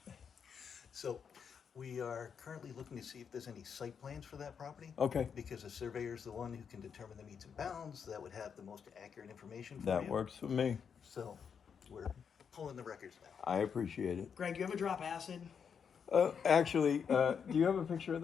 So we are currently looking to see if there's any site plans for that property. Okay. Because the surveyor is the one who can determine the meets and bounds, that would have the most accurate information for That you. works for me. So we're pulling the records back. I appreciate it. Greg, you ever drop acid? Actually, do you have a picture of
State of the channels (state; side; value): quieter; right; 6.9 dB